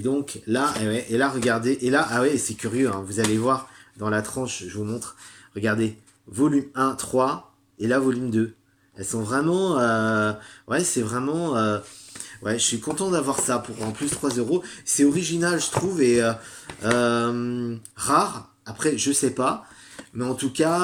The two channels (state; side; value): identical; both; correlation 1.00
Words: donc, là, et là, regardez. Et là, ah ouais, c'est curieux. Hein, vous allez voir dans la tranche, je vous montre. Regardez. Volume 1, 3. Et là, volume 2. Elles sont vraiment... ouais, c'est vraiment... ouais, je suis content d'avoir ça pour en plus 3 euros. C'est original, je trouve, et rare. Après, je sais pas. Mais en tout